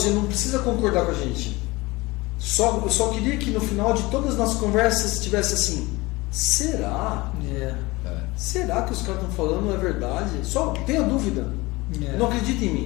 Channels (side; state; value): right; quieter; 22.2 dB